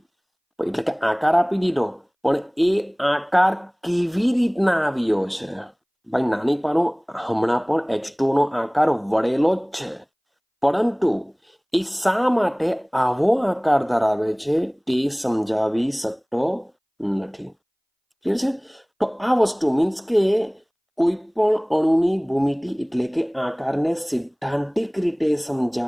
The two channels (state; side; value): identical; both; correlation 1.00